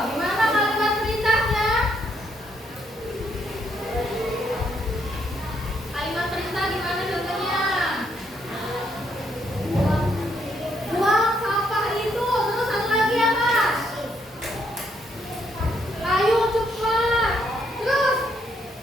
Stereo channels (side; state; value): both; normal; correlation 0.73